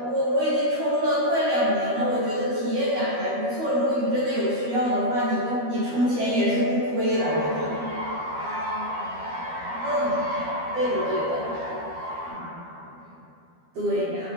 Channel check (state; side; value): late; left; 12 ms